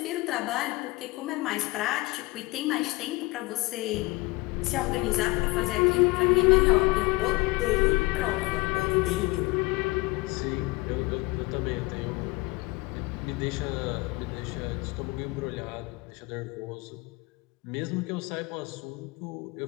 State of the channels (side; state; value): right; quieter; 22.6 dB